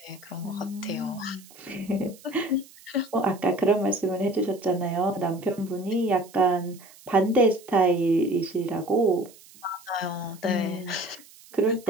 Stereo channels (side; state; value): right; noise; hiss, 23 dB below the sound